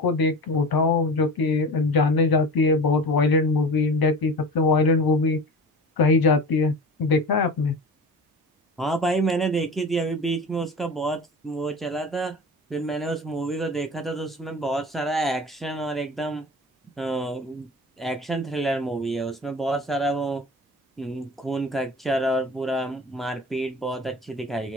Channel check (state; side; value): normal; both; correlation 0.34